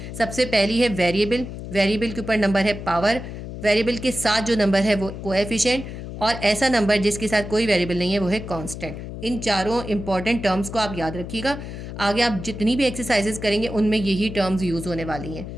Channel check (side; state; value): left; noise; hum, 9 dB below the sound